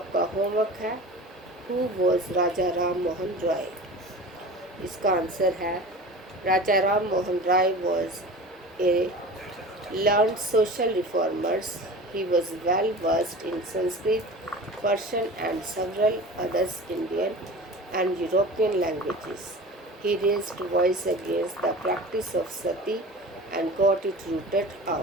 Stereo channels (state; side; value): normal; both; correlation 0.36